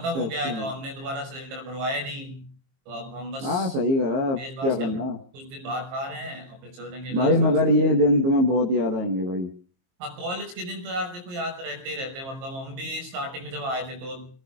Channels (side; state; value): left; late; 22 ms